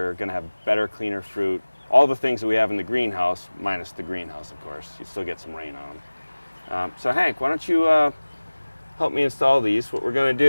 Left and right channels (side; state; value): both; inverted; correlation -1.00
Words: going to have better, cleaner fruit. All the things that we have in the greenhouse, minus the greenhouse, of course. You still get some rain on them. So Hank, why don't you help me install these? What we're going to